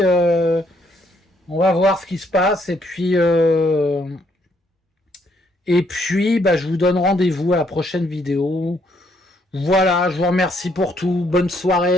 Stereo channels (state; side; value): normal; both; correlation 0.71